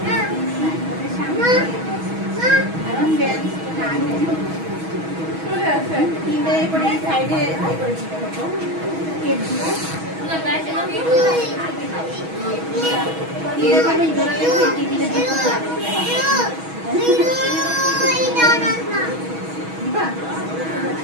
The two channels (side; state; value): left; late; 6.2 ms